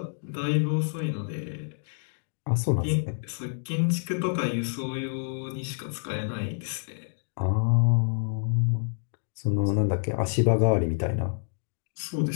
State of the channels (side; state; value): right; silent; digital silence